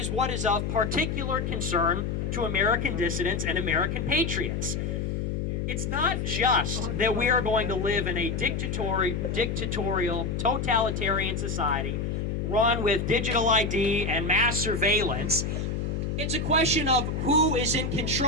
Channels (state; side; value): noise; left; hum, 2 dB below the sound